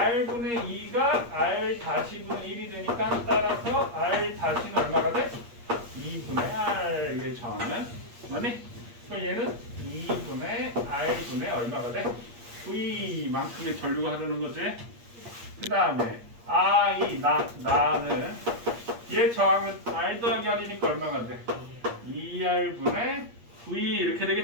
2가 R-분의 1이 되니까 따라서 R-는 얼마가 돼? 2분의 R의 저항은 맞니? 그럼 얘는 2분의 R분의 얼마가 돼? V만큼의 전류가 흐르는 거지? 그 다음에 나는 얘 저항은 R 더하기 R이니까 얼마가 돼? 2R분의 V 이렇게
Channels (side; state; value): left; late; 8.5 ms